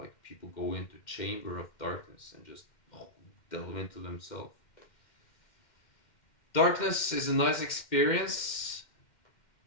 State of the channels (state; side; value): late; right; 2.1 ms